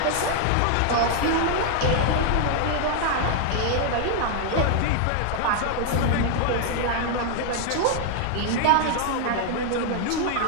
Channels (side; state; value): both; different; correlation 0.00